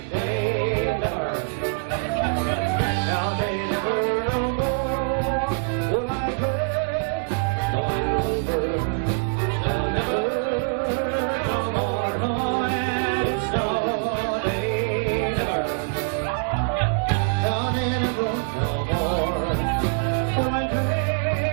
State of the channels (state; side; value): silent; left; 62 dB below the other